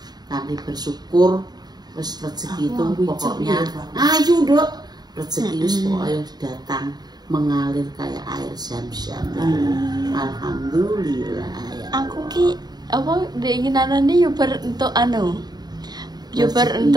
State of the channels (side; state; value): left; late; 0.20 ms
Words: kanthi bersyukur, terus rezeki itu pokoknya ayo dok, rezeki itu pokoknya datang mengalir kayak air zam-zam. Alhamdulillah. Ya Aku ki apa keinginanane yo bar entuk anu. Yo bar